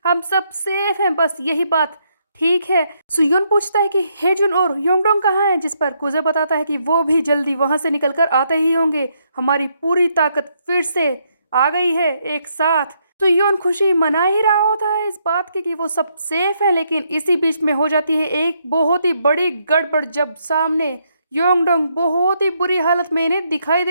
हम सब सेफ हैं, बस यही बात ठीक है। सुयोन पूछता है कि हेजुन और योंगडोंग कहाँ हैं। जिस पर कुजे बताता है कि वो भी जल्दी वहां से निकलकर आते ही होंगे, हमारी पूरी ताकत फिर से आ गई है एक साथ। सुयोन खुशी मना ही रहा होता है इस बात की कि वो सब सेफ है, लेकिन इसी बीच में हो जाती है एक बहुत ही बड़ी गड़बड़ जब सामने योंगडोंग बहुत ही बुरी हालत में इन्हें दिखाई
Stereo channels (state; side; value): inverted; both; correlation -0.75